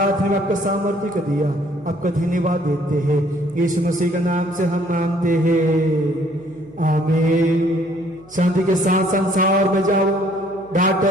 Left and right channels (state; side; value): noise; right; hum, 24 dB below the sound